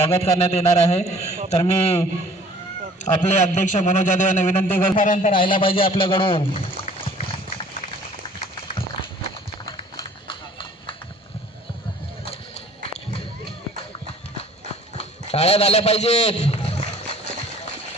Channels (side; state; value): both; normal; correlation 0.52